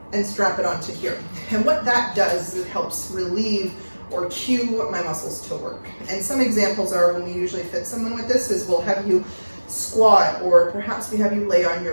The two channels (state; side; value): inverted; both; correlation -1.00